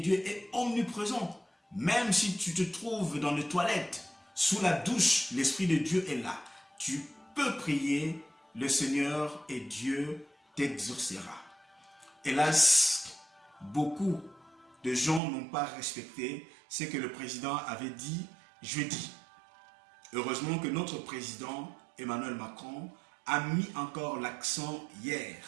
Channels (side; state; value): left; drops out; at 15.2 s